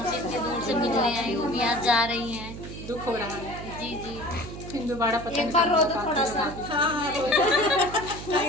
इतने दूर से मिलने आई, वो भी आज जा रही हैं। दुख हो रहा है। जी जी। फिर दोबारा पता नहीं एक बार रो दो थोड़ा सा। हाँ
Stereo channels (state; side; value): noise; right; hum, 11 dB below the sound